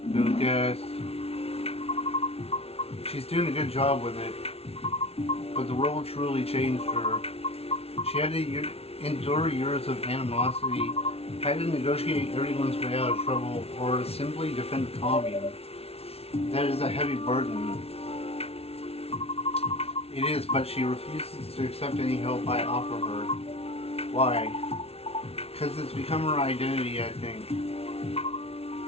Lucas. She's doing a good job with it, but the role truly changed her. She had to endure years of animosity, had to negotiate everyone's way out of trouble, or simply defend the commune. That is a heavy burden. It is, but she refuses to accept any help I offer her. Why? Because it's become her identity, I think.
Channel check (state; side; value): late; right; 0.29 ms